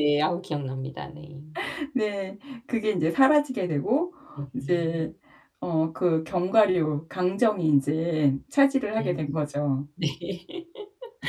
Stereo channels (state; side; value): identical; both; correlation 1.00